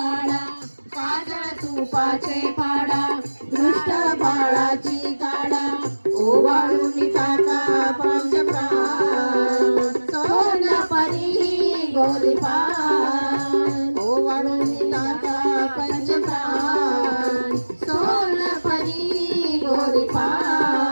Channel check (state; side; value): inverted; both; correlation -1.00